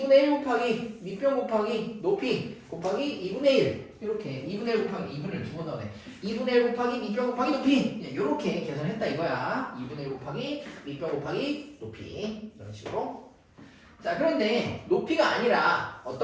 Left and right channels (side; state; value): both; identical; correlation 1.00